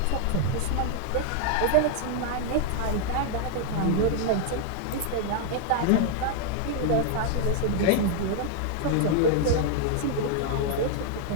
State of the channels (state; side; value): different; both; correlation 0.00